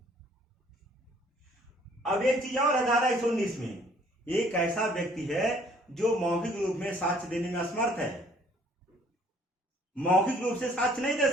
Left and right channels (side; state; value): both; normal; correlation 0.59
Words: अब एक चीज और है धारा 119 में, एक ऐसा व्यक्ति है जो मौखिक रूप में साक्ष्य देने में असमर्थ है, मौखिक रूप से साक्ष्य नहीं दे